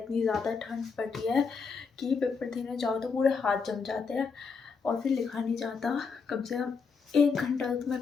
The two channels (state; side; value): quieter; right; 5.2 dB